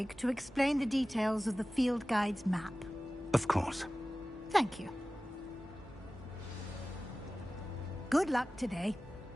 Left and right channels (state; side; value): normal; both; correlation 0.96